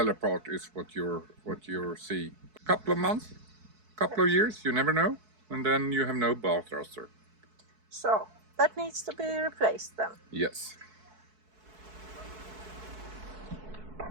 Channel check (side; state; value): left; late; 4.6 ms